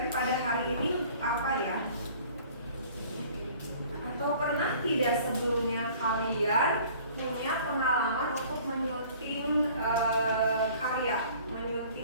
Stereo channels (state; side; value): inverted; both; correlation -0.51